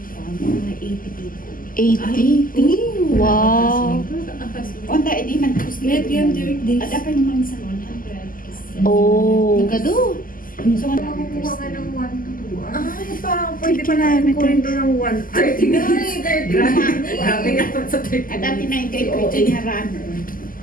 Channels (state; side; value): late; right; 0.41 ms